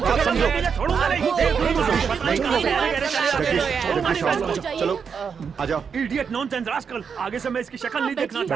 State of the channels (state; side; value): quieter; left; 6.4 dB